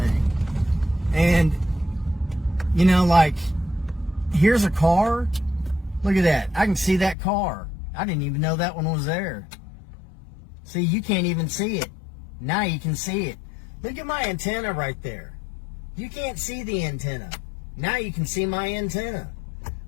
And, you know, like, here's a car. Look at that. I can see that car. I didn't even know that one was there. See, you can't even see it. Now you can see it. Look at my antenna right there. You can't see the antenna. Now you can see my antenna.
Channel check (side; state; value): right; drops out; at 7.2 s